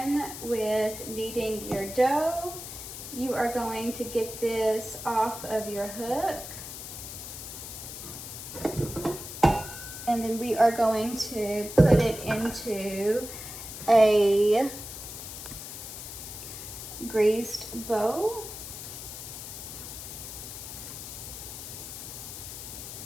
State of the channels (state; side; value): noise; left; hiss, 10 dB below the sound